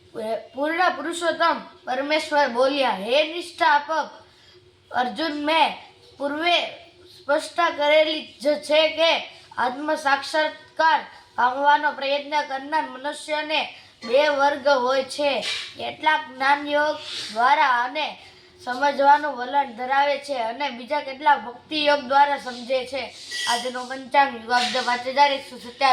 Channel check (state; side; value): identical; both; correlation 1.00